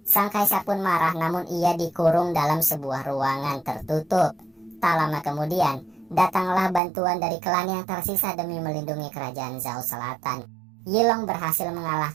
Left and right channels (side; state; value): left; drops out; at 6.8 s